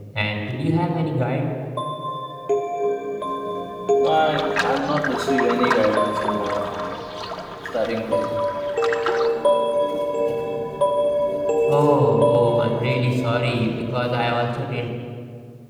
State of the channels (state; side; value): identical; both; correlation 1.00